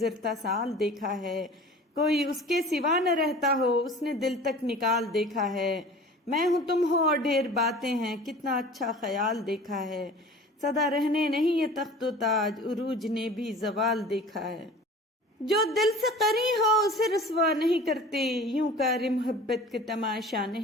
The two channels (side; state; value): both; normal; correlation 0.42